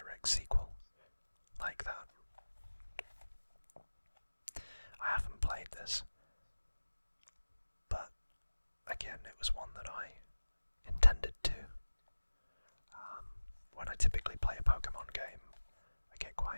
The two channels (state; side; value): inverted; both; correlation -1.00